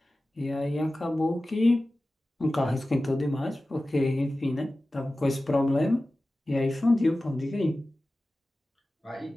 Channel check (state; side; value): normal; both; correlation 0.95